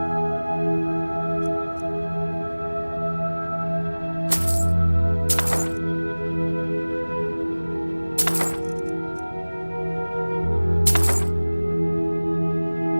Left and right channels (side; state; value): both; inverted; correlation -1.00